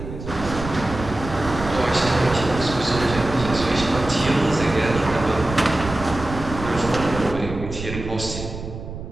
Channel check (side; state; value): right; noise; rumble, 9 dB below the sound